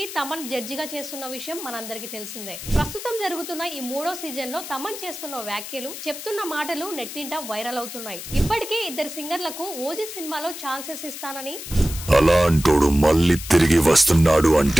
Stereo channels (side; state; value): left; noise; hiss, 10 dB below the sound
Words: తమన్ జడ్జిగా చేస్తున్న విషయం మనందరికీ తెలిసిందే. ప్రస్తుతం జరుగుతున్న ఈ 3వ సీజన్ లో తమన్ చేస్తున్న వ్యాఖ్యలు, చెప్తున్న మాటలు నెట్టింట వైరల్ అవుతున్నాయి. ఇప్పటికే 2 సింగర్లకు ఓజీ సినిమాలో ఛాన్సెస్ ఇస్తానని, అలాంటోడు మళ్ళీ తిరిగి వస్తున్నాడు